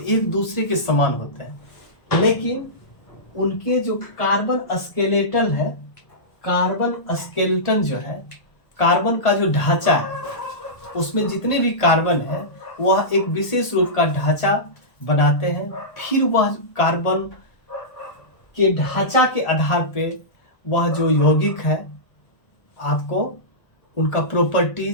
एक दूसरे के समान होते हैं, लेकिन उनके जो कार्बन स्केलेटल है, कार्बन स्केलेटन जो है, कार्बन का जो ढांचा है, उसमें जितने भी कार्बन है वह एक विशेष रूप का ढांचा बनाते हैं। फिर वह कार्बन के ढांचा के आधार पे वह जो यौगिक है आपको उनका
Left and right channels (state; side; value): late; right; 1.4 ms